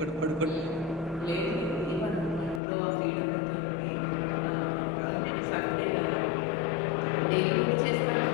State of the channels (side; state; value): right; drops out; at 2.6 s